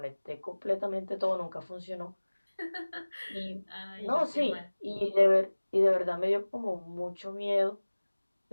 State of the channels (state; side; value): inverted; both; correlation -1.00